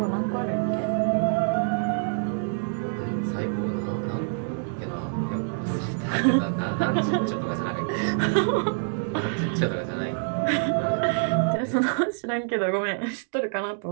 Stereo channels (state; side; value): silent; left; digital silence